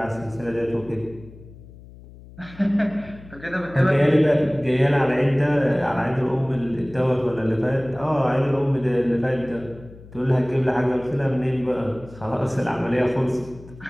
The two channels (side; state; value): left; noise; hum, 19 dB below the sound